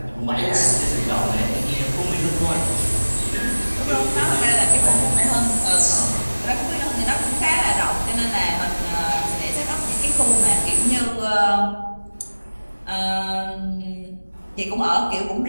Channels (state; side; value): inverted; both; correlation -1.00